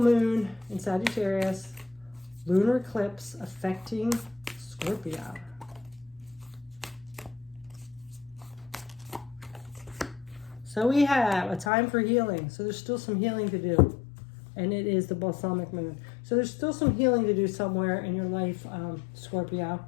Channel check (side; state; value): right; drops out; at 11.7 s